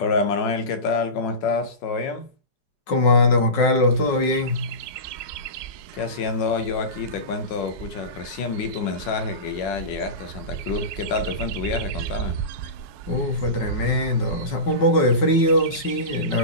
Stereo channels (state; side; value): late; right; 5.4 ms